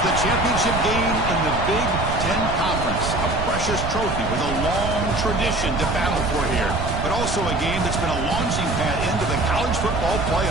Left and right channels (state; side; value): noise; right; rumble, 5 dB below the sound